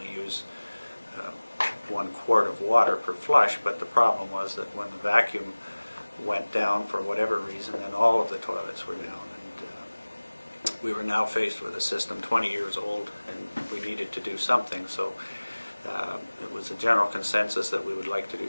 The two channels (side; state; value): both; inverted; correlation -1.00